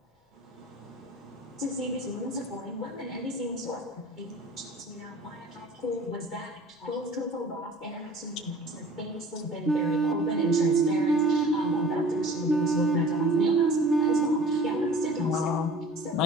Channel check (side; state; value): both; normal; correlation 0.44